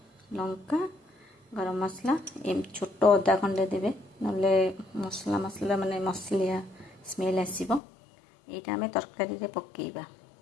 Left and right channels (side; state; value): right; drops out; at 7.8 s